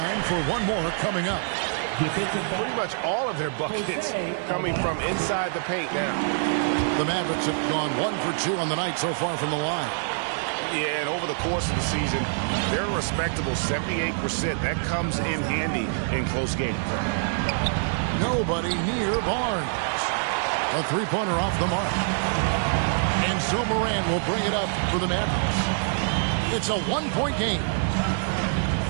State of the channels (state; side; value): silent; left; digital silence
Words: for one more coming up. Pretty much all of their buckets coming from inside the paint now. The Mavericks have gone 1 for 2 on the night so far from the line. Yeah, and over the course of the season, they're a respectable 78%. That comes in handy in close games. Nobody near Barnes. A three-pointer off the mark. And so Morant will bring it up for the Mavericks. It's a one-point game.